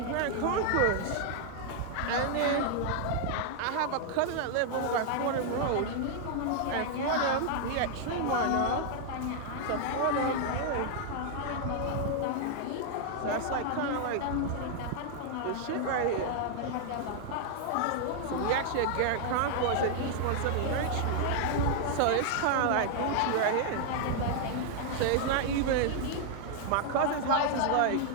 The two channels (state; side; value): different; both; correlation 0.00